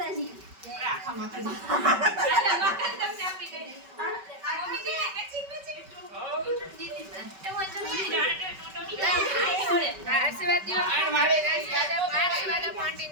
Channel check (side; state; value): left; late; 5.2 ms